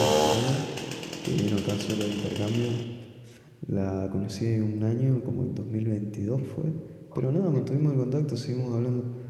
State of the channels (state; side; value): identical; both; correlation 1.00